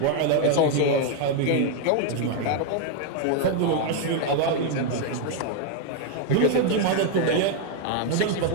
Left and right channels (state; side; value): different; both; correlation 0.01